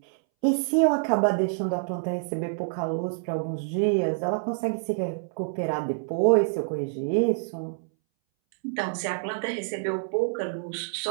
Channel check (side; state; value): left; silent; 60 dB below the other